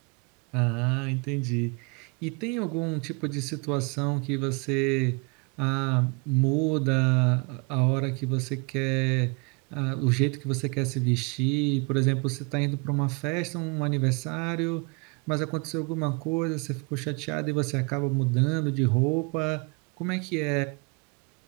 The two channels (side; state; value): left; quieter; 31.8 dB